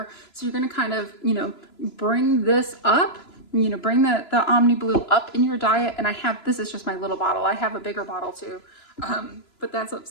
So you're going to kind of, bring this up, bring the Omniblue up in your diet. And this is just my little bottle. I have a bigger bottle too, but that's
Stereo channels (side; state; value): right; late; 3.0 ms